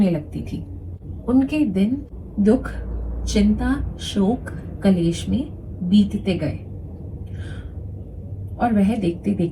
लगती थी। उनके दिन दुख, चिंता, शोक, कलेश में बीतते गए और वह देखते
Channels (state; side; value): identical; both; correlation 1.00